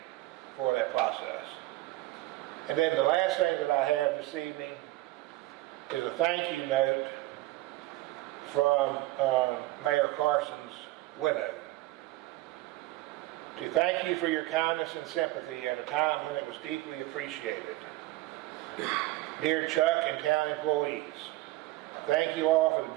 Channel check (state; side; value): quieter; left; 18.0 dB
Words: for that process. And then the last thing that I have this evening is a thank you note from Mayor Carson's widow. To thank you for your kindness and sympathy at a time when it was deeply appreciated. Dear Chuck and town employees, thank you all for the